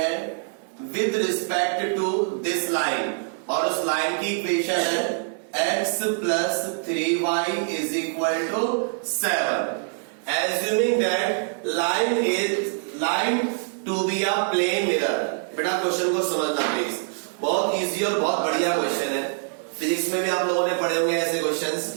with respect to this line, और उस लाइन की इक्वेशन है x plus 3y is equal to 7, assuming that line to be a plane mirror. बेटा क्वेश्चन को समझना प्लीज, बहुत इजी और बहुत बढ़िया क्वेश्चन है। फिजिक्स में भी आप लोगों ने पढ़े होंगे ऐसे क्वेश्चंस,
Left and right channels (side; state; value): left; silent; digital silence